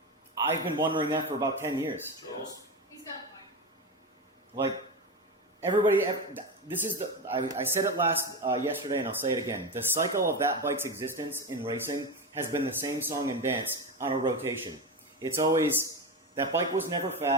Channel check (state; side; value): normal; both; correlation 0.18